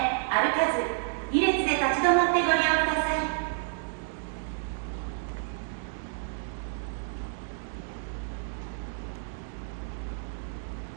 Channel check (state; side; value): silent; left; digital silence